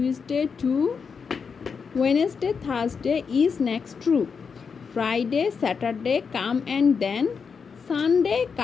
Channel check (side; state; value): right; quieter; 5.8 dB